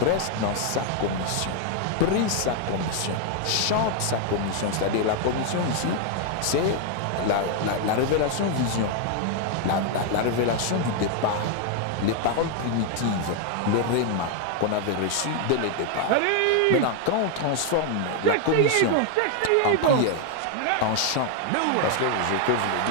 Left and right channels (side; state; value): both; different; correlation 0.00